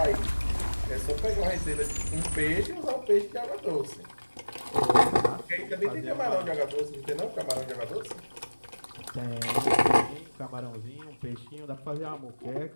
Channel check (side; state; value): both; inverted; correlation -1.00